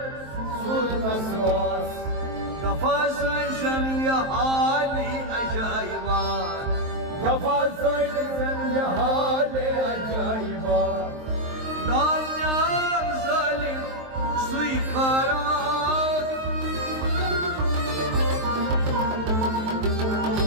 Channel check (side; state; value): left; late; 23 ms